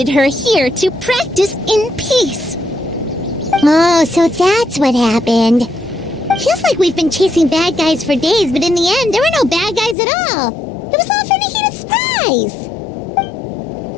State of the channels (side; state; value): right; drops out; at 10.0 s